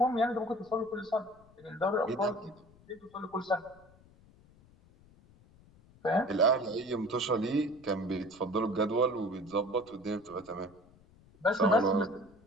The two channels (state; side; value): noise; left; rumble, 27 dB below the sound